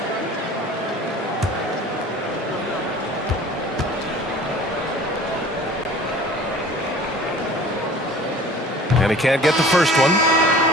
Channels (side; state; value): both; normal; correlation 0.46